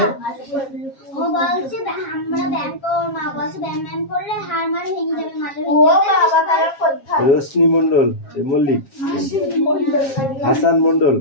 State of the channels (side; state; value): right; late; 7.4 ms